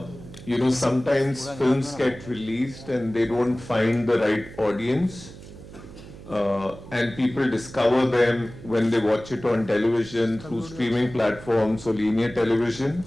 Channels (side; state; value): right; noise; hum, 16 dB below the sound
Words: sometimes films get released and they don't find the right audience. And people discover them when they watch it on television, through streaming platforms or linear television.